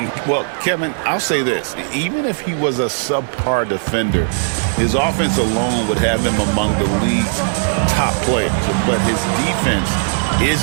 Well, Kevin, I'll say this. Even if he was a subpar defender, his offense alone would have him among the league's top players. But his defense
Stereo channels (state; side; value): silent; left; 68 dB below the other